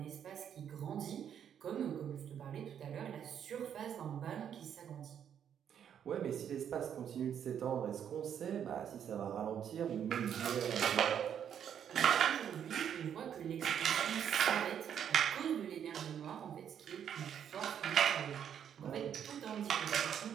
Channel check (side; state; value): left; quieter; 8.8 dB